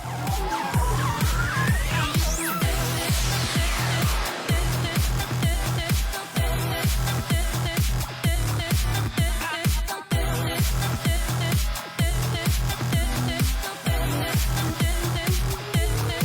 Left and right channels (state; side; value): identical; both; correlation 1.00